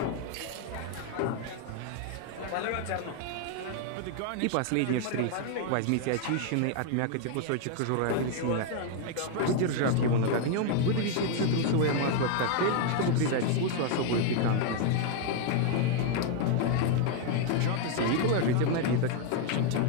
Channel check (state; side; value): different; both; correlation 0.00